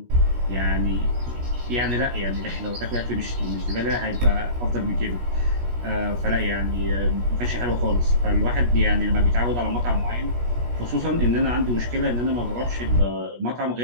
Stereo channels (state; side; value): late; left; 17 ms